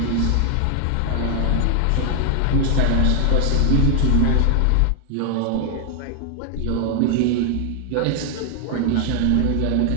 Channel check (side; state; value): both; different; correlation 0.00